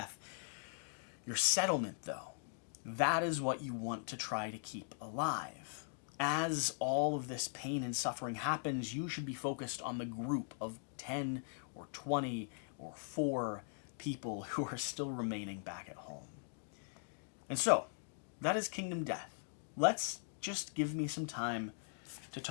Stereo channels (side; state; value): right; silent; digital silence